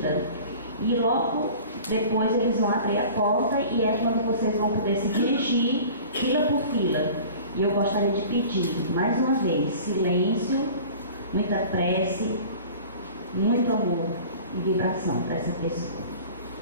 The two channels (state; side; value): inverted; both; correlation -0.42